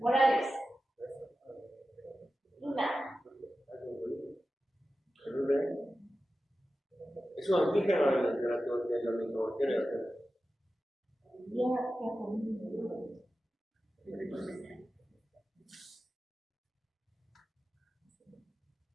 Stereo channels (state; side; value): normal; both; correlation 0.94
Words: Luna. Es un antígeno de la microbacteria.